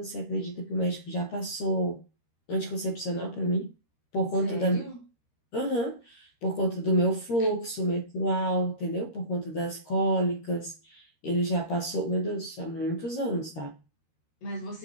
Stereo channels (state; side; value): late; right; 13 ms